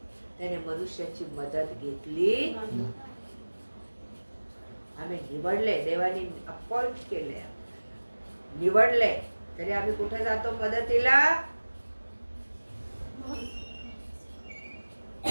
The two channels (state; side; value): inverted; both; correlation -1.00